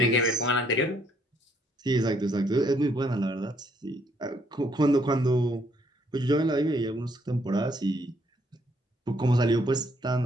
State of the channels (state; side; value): normal; both; correlation 0.69